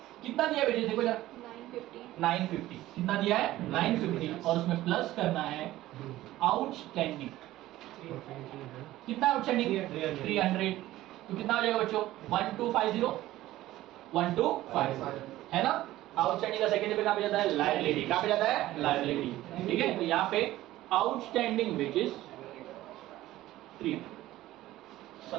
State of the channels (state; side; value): quieter; left; 15.6 dB